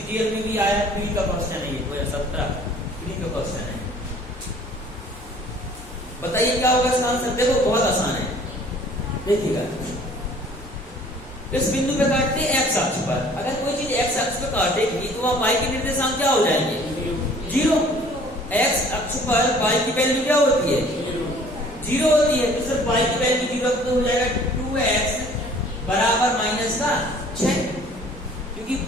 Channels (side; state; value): both; normal; correlation 0.53